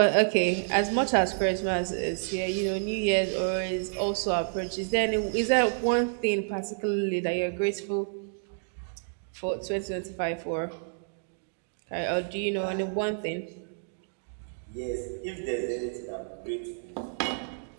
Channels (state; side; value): silent; left; digital silence